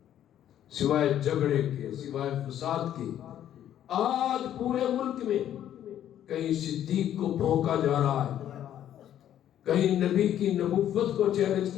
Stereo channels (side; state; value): right; quieter; 11.0 dB